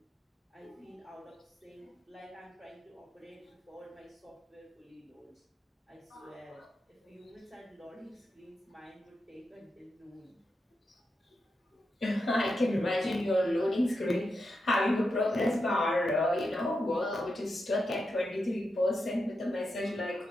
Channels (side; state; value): both; normal; correlation 0.87